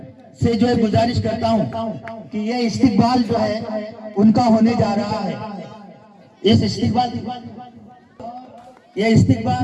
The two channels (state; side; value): identical; both; correlation 1.00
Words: से जो है गुजारिश करता हूं कि ये इस्तिकबाल जो है उनका होने जा रहा है। इस इस्तिकबाल